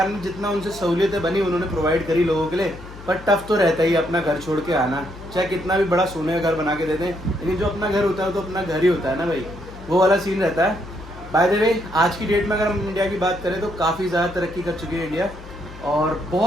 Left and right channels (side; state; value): left; noise; hum, 16 dB below the sound